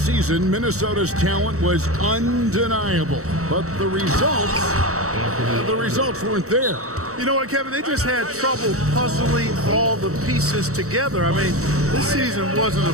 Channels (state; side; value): late; left; 0.65 ms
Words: season, Minnesota's talent was undeniable, but the results weren't there. You know what, Kevin? They just had trouble puzzling all the pieces together. I mean, this season wasn't a